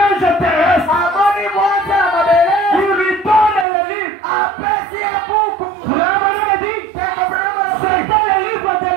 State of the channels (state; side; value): drops out; left; at 3.7 s